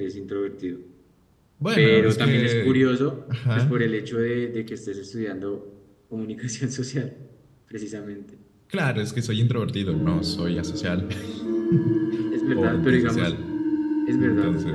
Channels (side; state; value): both; identical; correlation 1.00